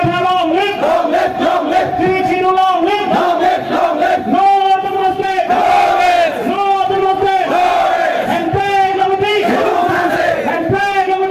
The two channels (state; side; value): identical; both; correlation 1.00